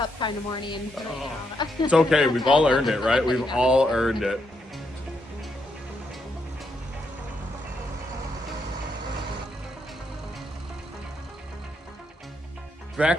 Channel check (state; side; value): normal; both; correlation 0.79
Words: kind of morning. it's okay. We've all earned it, right? We've all earned it.